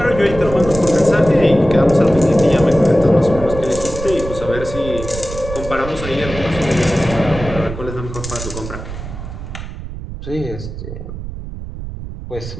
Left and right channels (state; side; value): noise; right; rumble, 9 dB below the sound